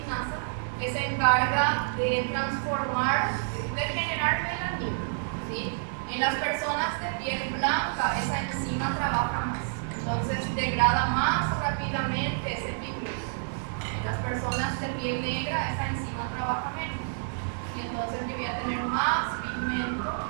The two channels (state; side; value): silent; left; digital silence